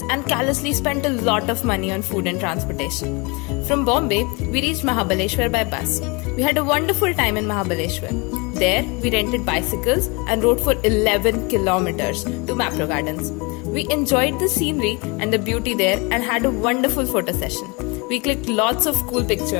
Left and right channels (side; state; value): right; quieter; 28.6 dB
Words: and callously spent a lot of money on food and transportation. From Bombay, we reached Mahabaleshwar by bus. We had a wonderful time in Mahabaleshwar. There, we rented bicycles and rode for 11 kilometers to Mapro Gardens. We enjoyed the scenery and the beauty there and had a wonderful photo session. We clicked lots of cool